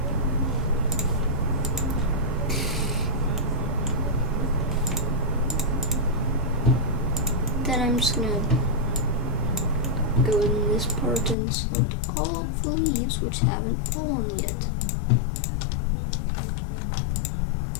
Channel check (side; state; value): right; drops out; at 11.4 s